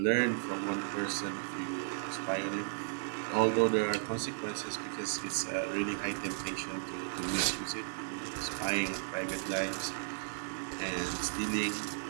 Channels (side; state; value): left; silent; digital silence